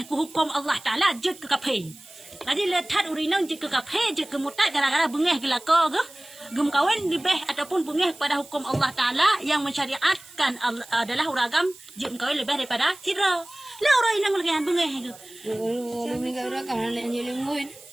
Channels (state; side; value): noise; right; hiss, 21 dB below the sound